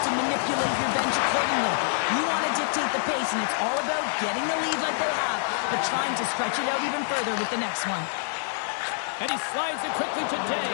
to manipulate your bench accordingly. You want to dictate the pace, and it's all about getting the lead like they have, but trying to stretch it out even further with the next one. And he slides it quickly to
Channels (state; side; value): silent; right; digital silence